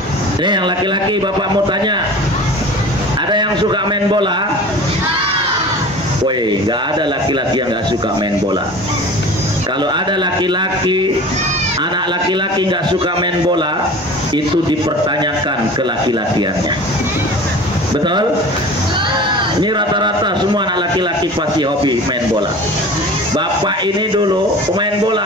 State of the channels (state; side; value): normal; both; correlation 0.39